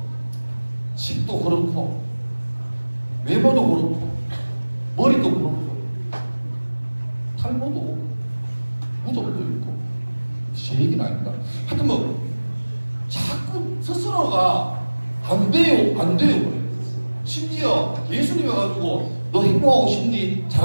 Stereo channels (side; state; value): both; inverted; correlation -1.00